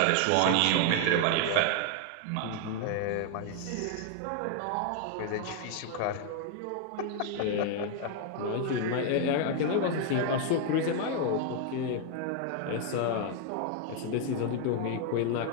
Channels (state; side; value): different; both; correlation 0.00